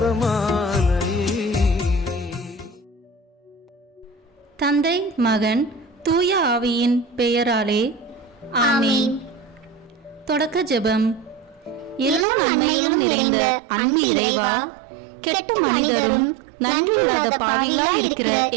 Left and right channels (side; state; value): left; drops out; at 12.2 s